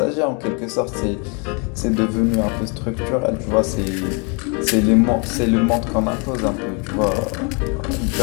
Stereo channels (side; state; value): right; quieter; 33.9 dB